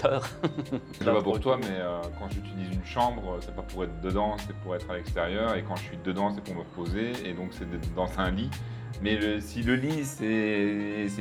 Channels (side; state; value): both; identical; correlation 1.00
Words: Je sais pas pour toi, mais quand j'utilise une chambre, c'est pas pour être dedans, c'est pour être à l'extérieur, et quand je suis dedans, c'est pour me reposer, et donc c'est d'être dans un lit. Mais si le lit, c'est